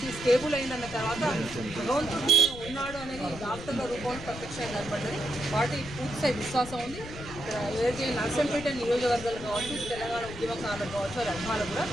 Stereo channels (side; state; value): left; noise; rumble, 12 dB below the sound